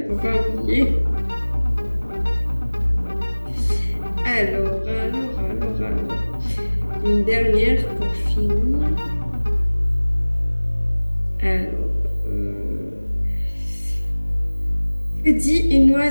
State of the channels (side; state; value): both; inverted; correlation -1.00